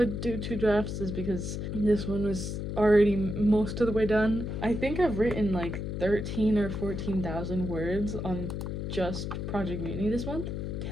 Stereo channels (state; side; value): noise; left; hum, 4 dB below the sound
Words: do 2 drafts is because this one was already most of the way done. I think I've written like 13 or 14,000 words on just Project Mutiny this month.